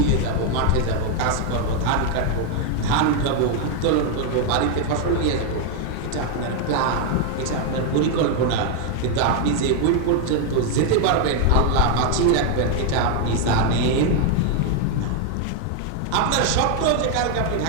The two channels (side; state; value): both; different; correlation 0.01